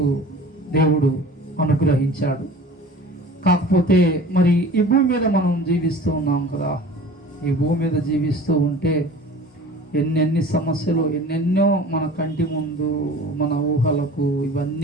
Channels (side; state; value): both; normal; correlation 0.42